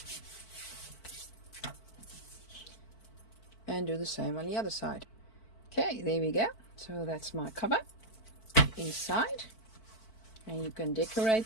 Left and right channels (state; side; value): late; right; 4.5 ms